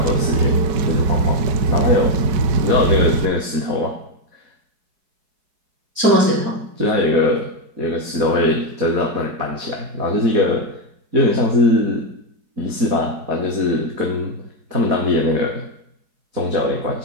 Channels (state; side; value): late; left; 4.7 ms